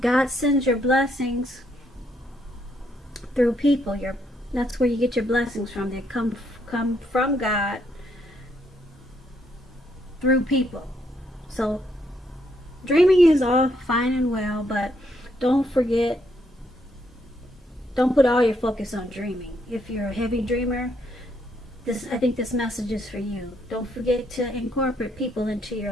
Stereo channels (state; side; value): normal; both; correlation 0.74